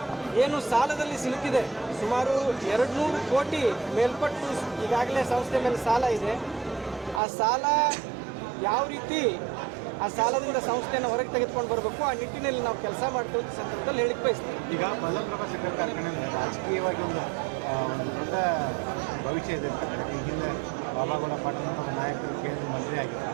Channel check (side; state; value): left; drops out; at 7.2 s